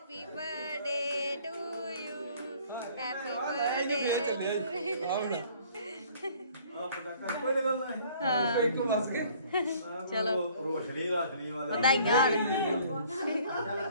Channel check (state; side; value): inverted; both; correlation -0.56